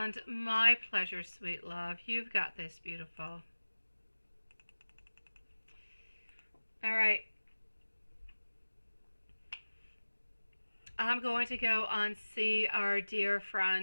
my pleasure, sweet love. You've got this, beautiful. All right. I'm going to go and see our dear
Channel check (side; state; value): both; inverted; correlation -1.00